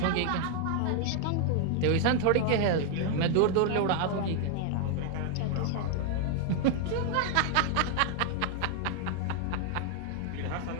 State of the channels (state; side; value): different; both; correlation 0.00